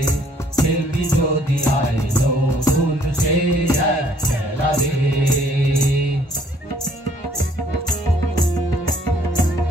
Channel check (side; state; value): both; normal; correlation 0.62